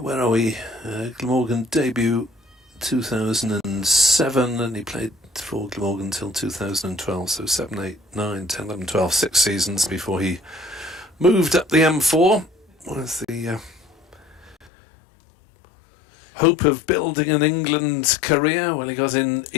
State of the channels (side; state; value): right; drops out; at 14.7 s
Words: Where are we? Glamorgan debut 2007, and he played for Glamorgan until 2012, so 7, 8, 9, 10, 11, 12, 6 seasons before he moved up the M4 with the hope of building an England career. Well, he got in